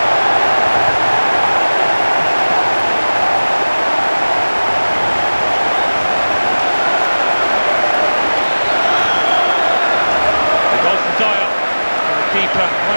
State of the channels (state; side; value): inverted; both; correlation -1.00